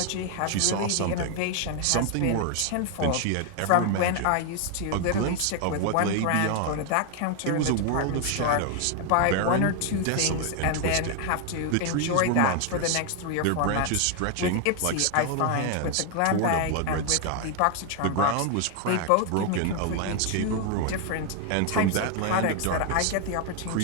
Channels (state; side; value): different; both; correlation 0.01